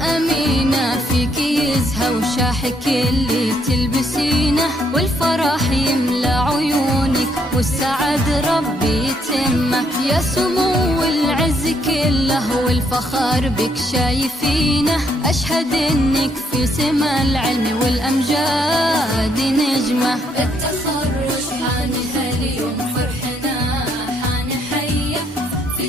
أمينة فيك يزهى وشاحك اللي تلبسينه، والفرح يملى عيونك والسعد ربي يتمه. يا سمو العز كله والفخر بك شايفينه، أشهد إنك في سما العلم والأمجاد نجمة. التخرج حان هاليوم فرحنا حان حية في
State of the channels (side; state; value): both; normal; correlation 0.72